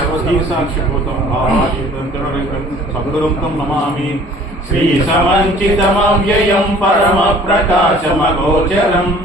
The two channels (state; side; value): normal; both; correlation 0.51